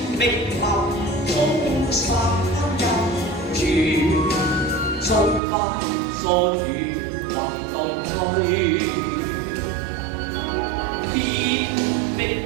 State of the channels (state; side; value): drops out; left; at 5.4 s